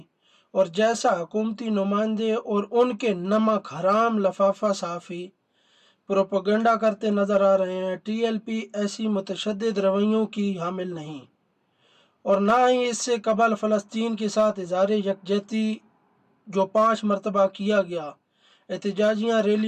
और जैसा हुकूमती नुमाइंदे और उनके नमक हराम लफाफा सहाफ़ी प्रोपेगेंडा करते नज़र आ रहे हैं, TLP ऐसी मुतशद्दिद रवैयों की हामिल नहीं और ना ही इससे कबल फ़लस्तीन के साथ इज़हार यकजहती जो 5 मरतबा किया गया, एहतजाजियाँ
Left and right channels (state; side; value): identical; both; correlation 1.00